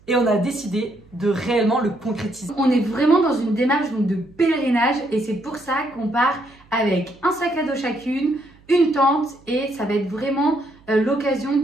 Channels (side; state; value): right; noise; hum, 28 dB below the sound